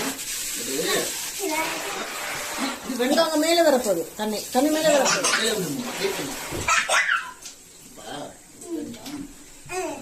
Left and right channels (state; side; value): identical; both; correlation 1.00